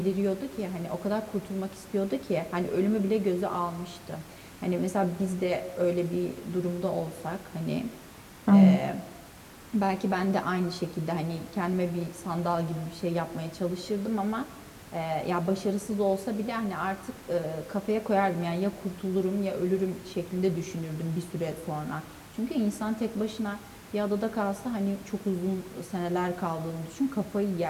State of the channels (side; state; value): both; identical; correlation 1.00